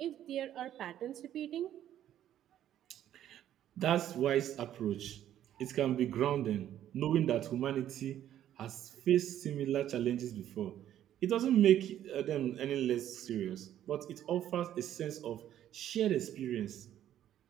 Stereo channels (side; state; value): left; quieter; 11.4 dB